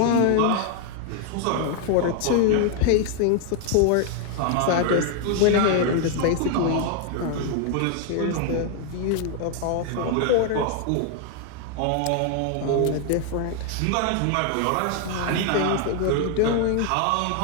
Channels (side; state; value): both; different; correlation 0.00